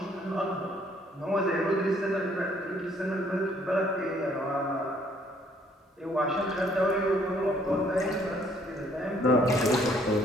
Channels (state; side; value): normal; both; correlation 0.64